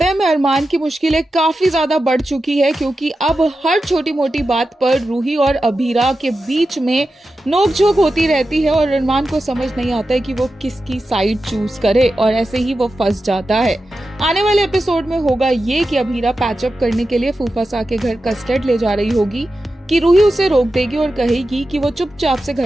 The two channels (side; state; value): both; normal; correlation 0.91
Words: है में अरमान की मुश्किलें काफी ज्यादा बढ़ चुकी है क्योंकि अब हर छोटी मोटी बात पर रूही और अभीरा के बीच में नोकझोंक होती रहती है और अरमान को समझ नहीं आता है कि वो किसकी साइड चूज करे और ऐसे ही वो फंस जाता है। आने वाले एपिसोड में होगा ये कि अभीरा पैचअप करने के लिए फूफासा के घर कस्टर्ड ले जा रही होगी कि रूही उसे रोक देगी और कहेगी कि वो चुपचाप से